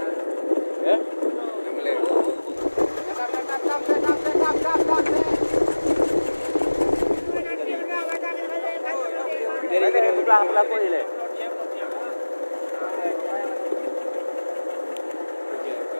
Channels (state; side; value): inverted; both; correlation -1.00